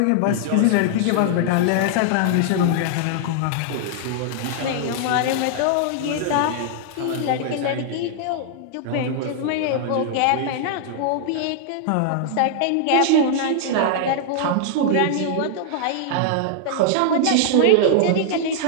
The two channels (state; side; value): different; both; correlation -0.01